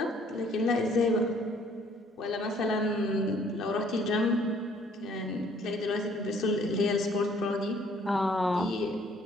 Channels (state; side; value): normal; both; correlation 0.60